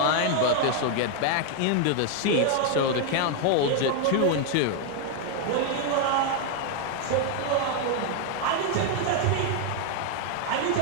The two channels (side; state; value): both; different; correlation 0.00